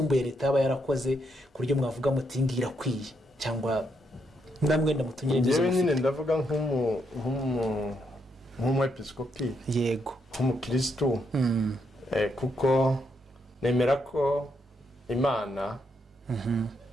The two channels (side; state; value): both; normal; correlation 0.78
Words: leta yaba yarakoze ku buryo mwavuga muti ngira kwiye cyangwa namwe ndamutunyire n'izo. Yewe nyine ndavuga nk'umwepiskopi, yego nk'umukristo, kuko nemera ko Imana